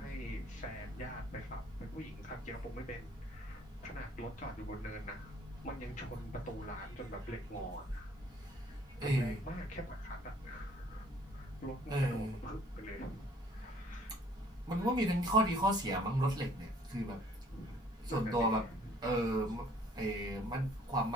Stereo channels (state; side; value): normal; both; correlation 0.59